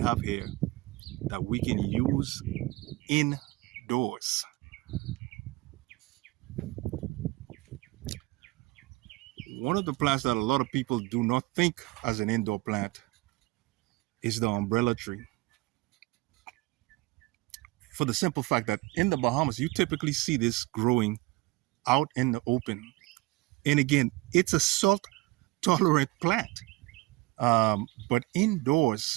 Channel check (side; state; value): left; quieter; 21.4 dB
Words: here that we can use indoors. One of the plants that a lot of people do not think as an indoor plant is the umbrella tree. For the simple fact that in the Bahamas, you typically see this growing out in the open. And again, it's a salt tolerant plant. But